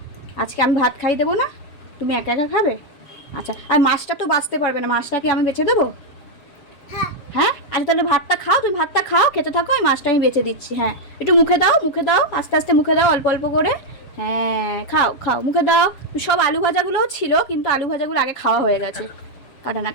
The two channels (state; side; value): late; right; 7.4 ms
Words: আজকে আমি ভাত খাই দেবো না, তুমি একা একা খাবে? আচ্ছা, আর মাছটা তো বাঁচতে পারবে না, মাছটা কি আমি বেছে দেবো? হ্যাঁ আচ্ছা, তাহলে ভাতটা খাও, তুমি ভাতটা খাও, খেতে থাকো, আমি মাছটা আমি বেছে দিচ্ছি। হ্যাঁ, একটু মুখে দাও, মুখে দাও, আস্তে আস্তে মুখে দাও, অল্প অল্প করে। হ্যাঁ খাও খাও, মুখে দাও। সব আলু ভাজাগুলোও ছিল, কিন্তু আলু ভাজাগুলো আগে খাওয়া হয়ে গেছে। কাটা না,